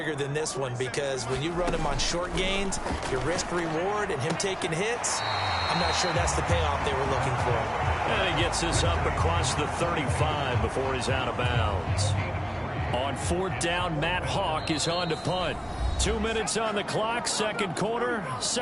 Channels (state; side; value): identical; both; correlation 1.00